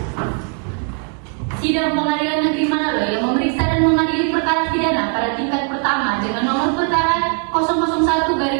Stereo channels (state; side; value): quieter; left; 38.6 dB